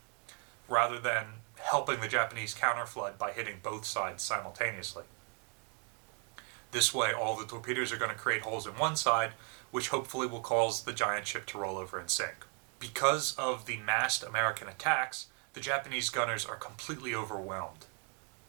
rather than helping the Japanese counterflood by hitting both sides simultaneously. This way, all the torpedoes are going to create holes in one side, which hopefully will cause the giant ship to roll over and sink. Because of the massed American attacks, the Japanese gunners are completely overwhelmed.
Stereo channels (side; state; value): left; quieter; 38.5 dB